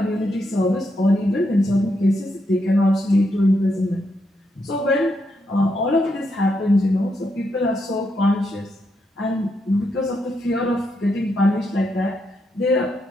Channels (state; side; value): normal; both; correlation 0.81